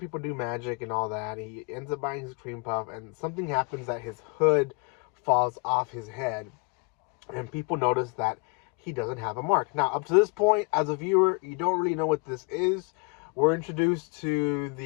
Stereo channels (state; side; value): quieter; right; 32.8 dB